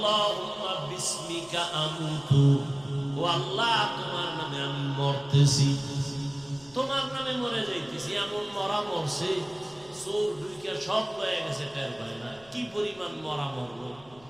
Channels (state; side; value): noise; left; rumble, 26 dB below the sound